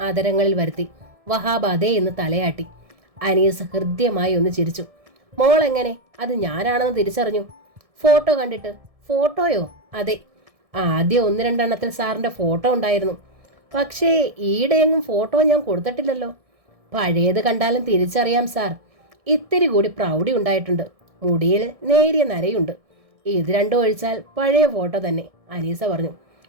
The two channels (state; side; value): late; left; 1.6 ms